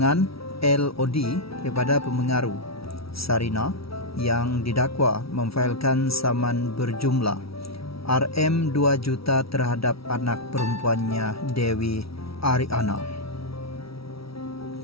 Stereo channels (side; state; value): right; late; 0.76 ms